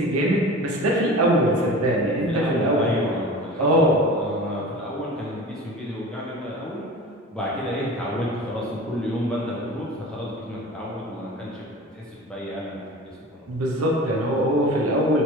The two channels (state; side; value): normal; both; correlation 0.37